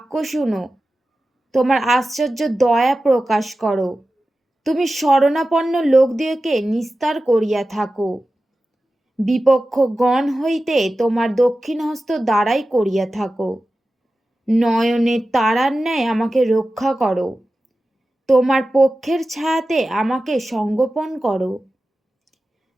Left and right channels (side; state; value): both; normal; correlation 0.94